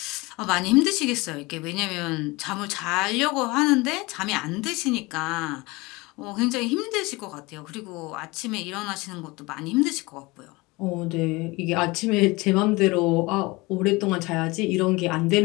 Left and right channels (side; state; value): right; quieter; 23.4 dB